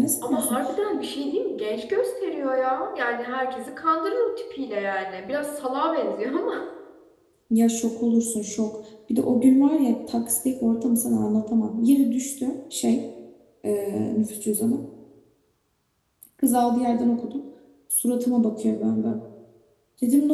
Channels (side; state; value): both; identical; correlation 1.00